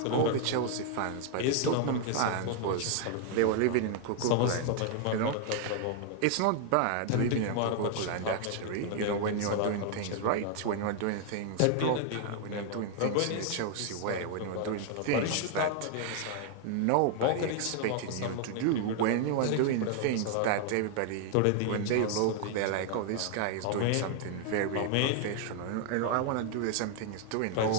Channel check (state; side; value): different; both; correlation 0.00